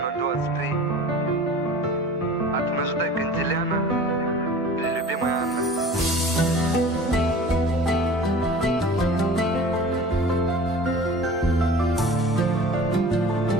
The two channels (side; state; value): both; normal; correlation 0.42